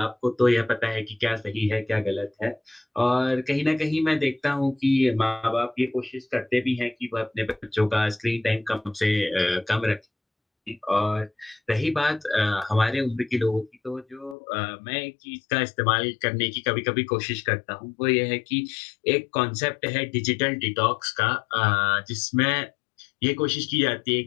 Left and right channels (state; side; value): drops out; right; at 14.4 s